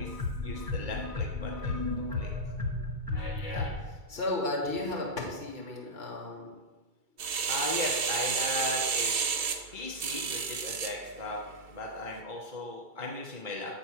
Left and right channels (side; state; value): left; late; 2.3 ms